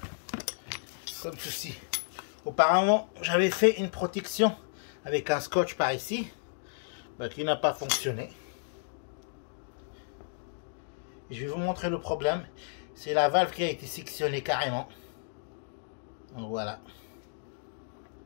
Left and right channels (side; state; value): right; silent; digital silence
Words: comme ceci. Auparavant, j'avais fait une protection avec un scotch par ici, qui n'a pas fonctionné. Je vais vous montrer le problème. C'est la valve qui a été sectionnée carrément. Donc voilà.